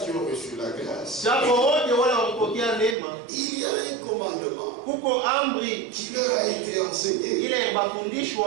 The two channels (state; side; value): drops out; left; at 3.0 s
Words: ont reçu la grâce, il y a un commandement qui leur a été enseigné.